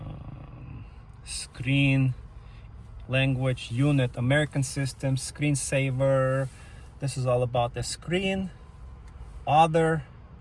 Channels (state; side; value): identical; both; correlation 1.00